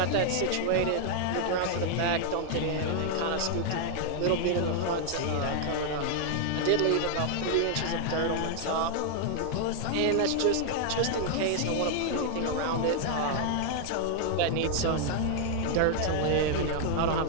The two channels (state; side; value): different; both; correlation 0.00